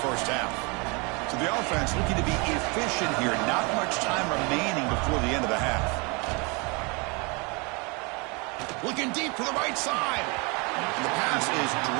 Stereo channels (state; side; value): quieter; left; 30.0 dB